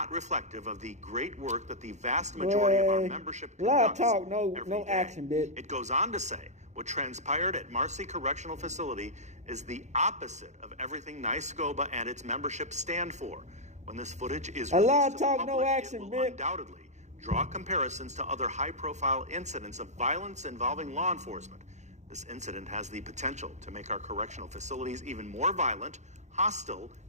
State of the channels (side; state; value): left; late; 0.34 ms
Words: reflective of the great work that the vast majority of our membership a lot of conducts talk, every no day. action, bitch. It goes on to say, what transpired at Marcy Correctional Facility is the opposite of everything NYSCOBA and its membership stand for. When this footage is A lot released of to the talk, public, no action, it will bitch. undoubtedly draw comparisons to other high-profile incidents of violence involving law enforcement. This incident has the potential to make our correctional facilities even more violent, hostile,